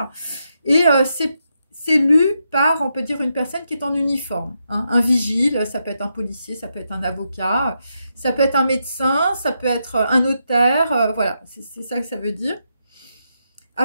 Et c'est lu par, on peut dire, une personne qui est en uniforme, hein. Un vigile, ça peut être un policier, ça peut être un avocat, ça peut être un médecin, ça peut être un notaire, voilà, c'est ça que ça veut dire.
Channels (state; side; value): inverted; both; correlation -0.83